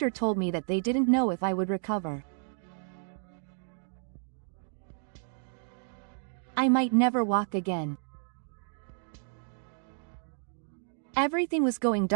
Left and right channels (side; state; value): left; silent; digital silence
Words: told me that they didn't know if I would recover. I might never walk again. Everything was going